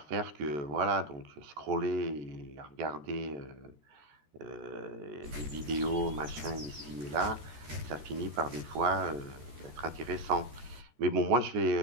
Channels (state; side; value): late; left; 13 ms